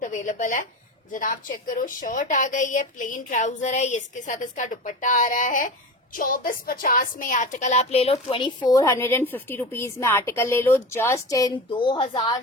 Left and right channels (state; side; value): normal; both; correlation 0.29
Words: अवेलेबल है। जनाब चेक करो, शर्ट आ गई है, प्लेन ट्राउजर है, इसके साथ इसका दुपट्टा आ रहा है। 2450 में आर्टिकल आप ले लो, 2450 रुपीज में आर्टिकल ले लो, जस्ट इन